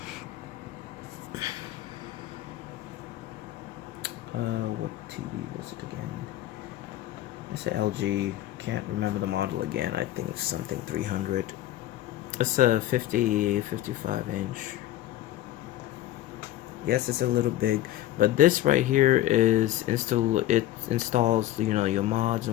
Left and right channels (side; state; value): right; quieter; 14.0 dB